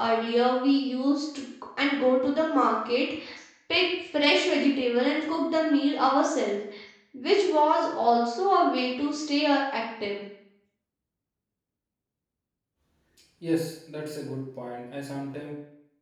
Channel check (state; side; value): identical; both; correlation 1.00